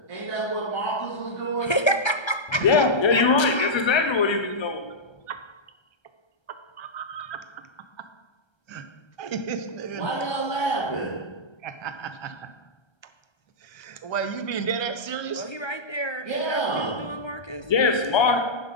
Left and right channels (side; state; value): right; late; 1.3 ms